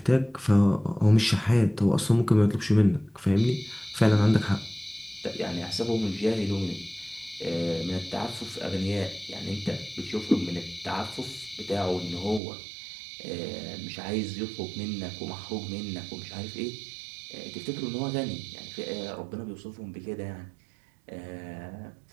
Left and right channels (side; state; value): left; drops out; at 12.4 s